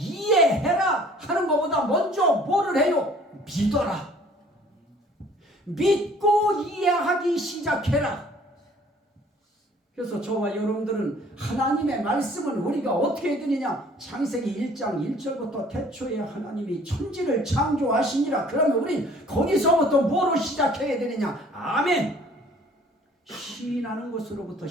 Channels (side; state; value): both; normal; correlation 0.54